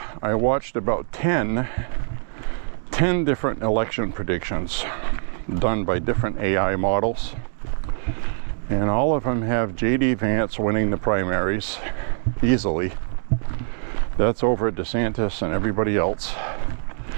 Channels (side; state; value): left; silent; digital silence